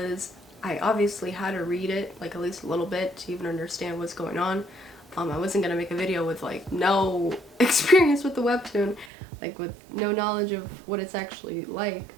I obviously had to read it like at least a little bit to even understand what's going on. I wasn't gonna make a video with like no experience with the webtoon, like with no knowledge of what it's actually like.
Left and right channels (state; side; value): drops out; left; at 9.1 s